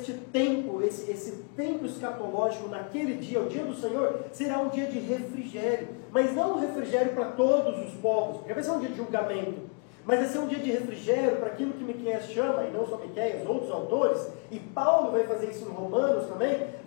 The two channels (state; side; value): quieter; right; 35.6 dB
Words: tempo, esse tempo escatológico naquele dia, o dia do Senhor, será um dia de refrigério. Mas não um refrigério para todos os povos, porque vai ser um dia de julgamento. Mas vai ser um dia de refrigério para aquilo que Miqueias chama, e não só Miqueias, outros autores, e Paulo vai fazer isso em Romanos também,